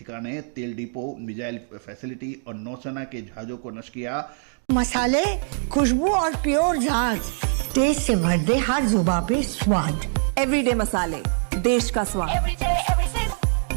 तेल डिपो, मिसाइल फैसिलिटी और नौसेना के जहाज़ों को नष्ट किया। मसाले, खुशबू और प्योर झांझ, टेस्ट से भर दे हर जुबां पे स्वाद। एवरीडे मसाले, देश का स्वाद।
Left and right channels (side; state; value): left; silent; 63 dB below the other